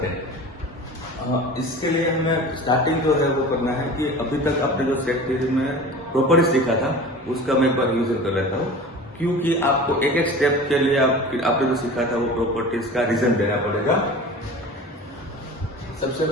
है। इसके लिए हमें स्टार्टिंग जो है वो करना है कि अभी तक आपने जो सेट थ्योरी में प्रॉपर्टीज सीखा था उसका मैं एक बार रिविजन कर लेता हूँ, क्योंकि आपको एक एक स्टेप के लिए आपने जो सीखा था वो प्रॉपर्टीज का रीजन देना पड़ेगा। सबसे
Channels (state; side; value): normal; both; correlation 0.37